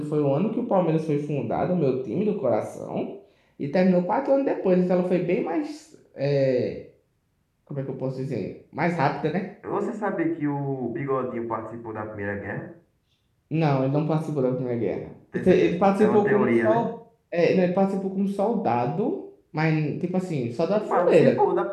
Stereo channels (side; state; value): both; identical; correlation 1.00